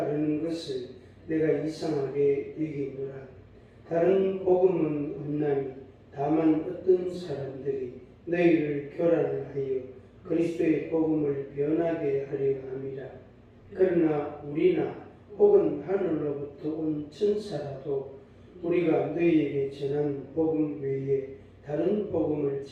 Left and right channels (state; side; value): identical; both; correlation 1.00